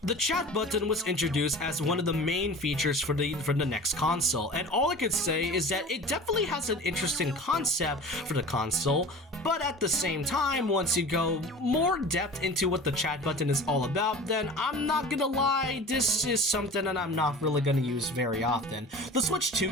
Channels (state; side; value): normal; both; correlation 0.38